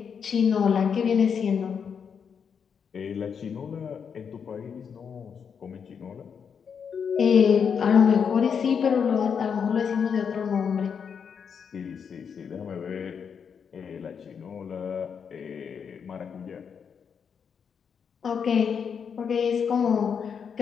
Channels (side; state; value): right; quieter; 6.8 dB